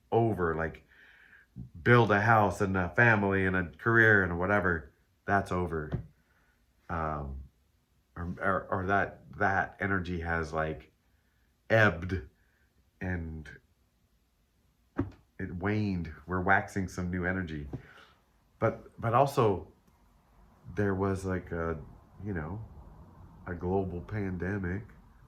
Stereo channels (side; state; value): both; identical; correlation 1.00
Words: over. Like, build a house and a family and a career and whatever, that's over. um or that energy has like ebbed, and it waned. We're waxing some new energy, but also there was like a, you know, a global pandemic